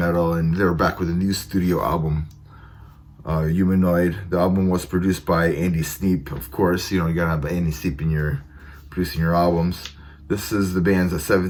and they were back with a new studio album, Humanoid. The album was produced by Andy Sneap, of course. You gotta have Andy Sneap in producing your albums. This is the band's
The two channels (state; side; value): identical; both; correlation 1.00